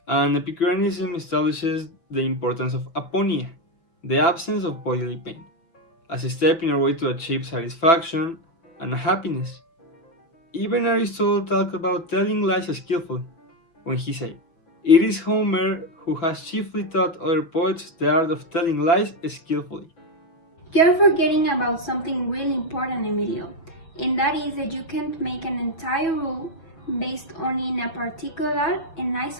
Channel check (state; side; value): late; right; 5.9 ms